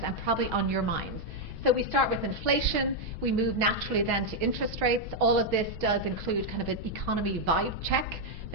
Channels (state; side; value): normal; both; correlation 0.00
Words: and probably on your minds. So we start with inflation, we move naturally then to interest rates. All of this does include kind of an economy vibe check,